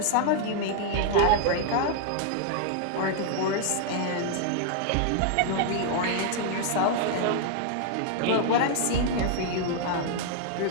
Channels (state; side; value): different; both; correlation 0.00